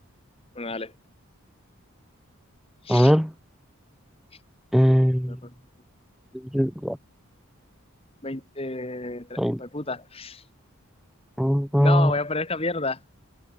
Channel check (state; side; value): normal; both; correlation 0.88